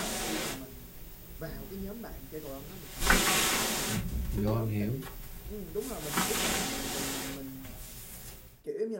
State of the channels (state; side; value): identical; both; correlation 1.00